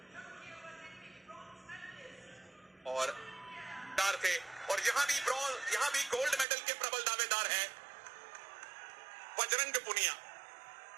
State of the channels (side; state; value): left; drops out; at 6.5 s